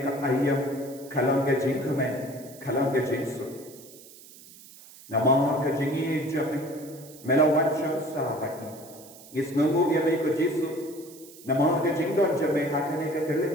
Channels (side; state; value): right; noise; hiss, 20 dB below the sound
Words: ka ayam kalang ke Jingmane kalang ke Jesu. Namar ke Jingi jame melawat syamsa bagi. Ngis ngungu ya me ko Jesu. Namar ke Jingdon jame hakane ke